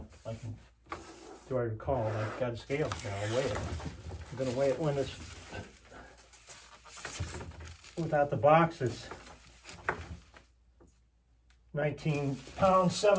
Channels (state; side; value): identical; both; correlation 1.00